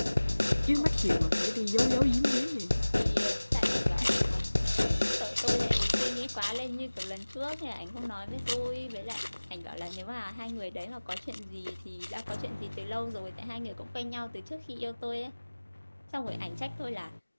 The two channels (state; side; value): inverted; both; correlation -1.00